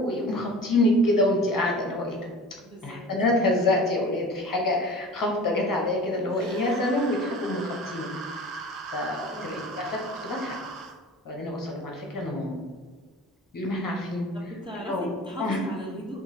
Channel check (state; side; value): normal; both; correlation 0.39